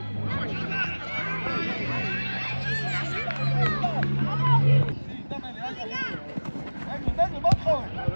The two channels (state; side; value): inverted; both; correlation -1.00